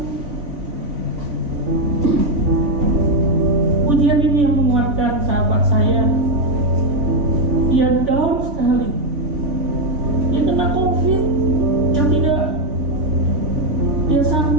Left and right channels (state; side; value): late; left; 3.5 ms